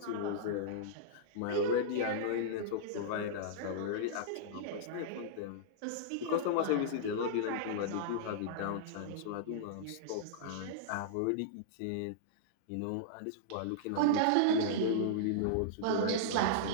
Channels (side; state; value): both; different; correlation -0.02